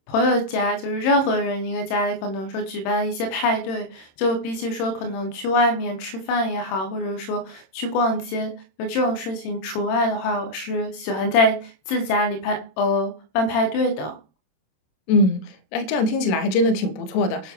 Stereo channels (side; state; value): right; late; 26 ms